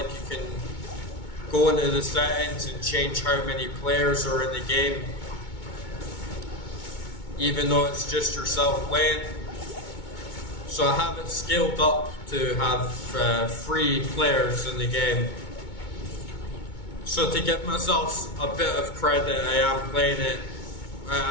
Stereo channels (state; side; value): late; right; 2.2 ms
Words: you can go into the settings and change how many players are in the game, even though it's just yourself playing. So I have it scaled up to have 3 players in the game. So to give myself a bit of credit, I am playing it